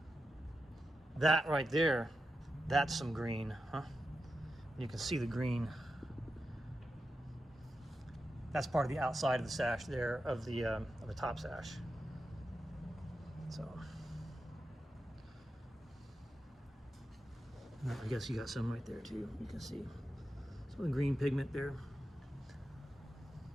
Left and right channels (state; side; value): normal; both; correlation 0.90